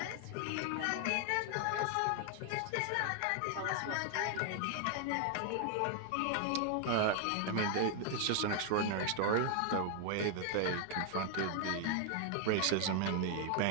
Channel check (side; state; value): both; different; correlation 0.00